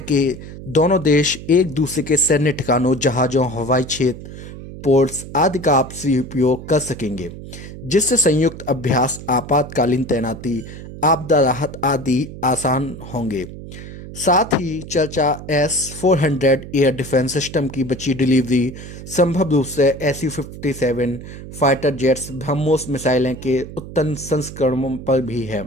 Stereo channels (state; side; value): noise; right; hum, 13 dB below the sound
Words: कि दोनों देश एक दूसरे के सैन्य ठिकानों, जहाज़ों, हवाई क्षेत्र, पोर्ट्स आदि का आपसी उपयोग कर सकेंगे, जिससे संयुक्त अभ्यास, आपातकालीन तैनाती, आपदा राहत आदि आसान होंगे। साथ ही चर्चा S-400 एयर डिफेंस सिस्टम की बची डिलीवरी, संभव रूप से Su-57 फाइटर जेट्स, ब्रह्मोस मिसाइलें के उन्नत संस्करणों पर भी है।